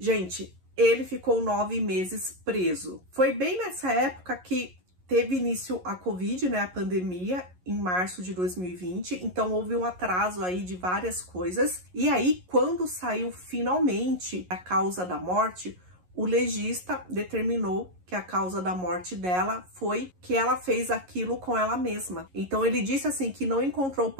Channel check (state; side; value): late; left; 11 ms